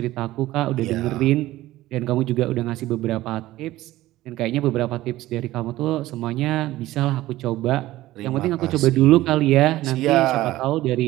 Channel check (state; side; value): quieter; left; 16.3 dB